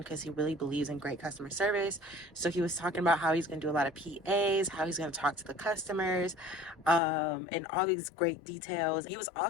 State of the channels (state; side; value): drops out; right; at 7.0 s